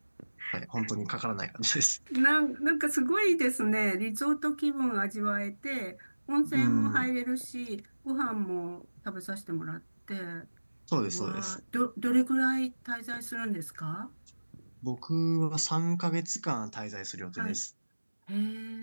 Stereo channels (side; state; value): both; inverted; correlation -1.00